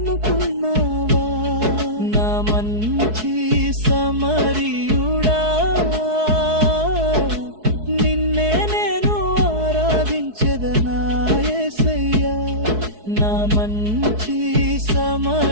నా మంచి సమరియుడా నిన్నే నేను ఆరాధించెదనా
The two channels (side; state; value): left; late; 4.7 ms